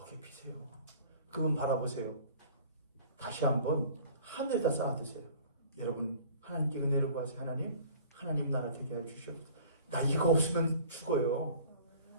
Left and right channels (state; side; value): inverted; both; correlation -0.47